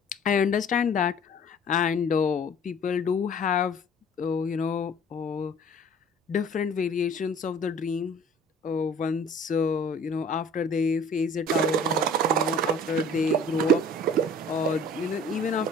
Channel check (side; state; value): both; normal; correlation 0.49